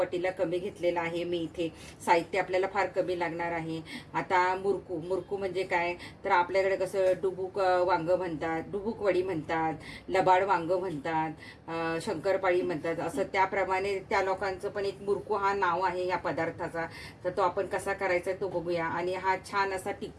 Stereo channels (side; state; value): both; identical; correlation 1.00